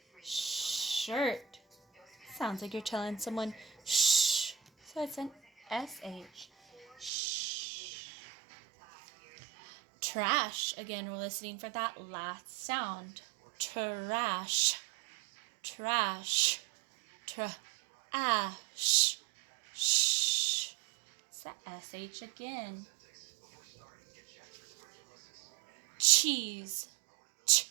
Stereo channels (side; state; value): left; drops out; at 7.1 s